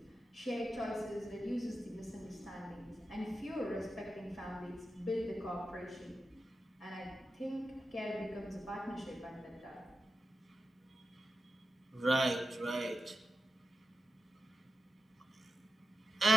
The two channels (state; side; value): normal; both; correlation 0.90